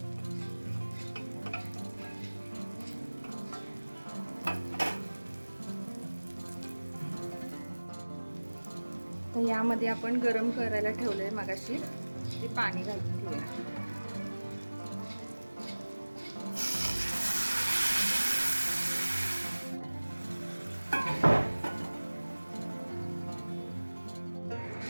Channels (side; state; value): both; inverted; correlation -1.00